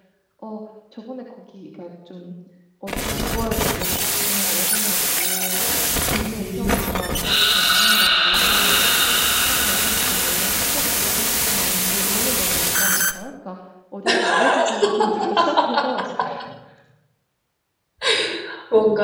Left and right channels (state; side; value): identical; both; correlation 1.00